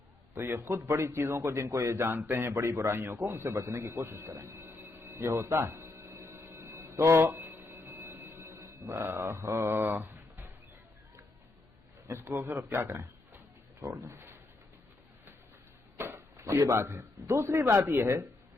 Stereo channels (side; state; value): right; quieter; 3.0 dB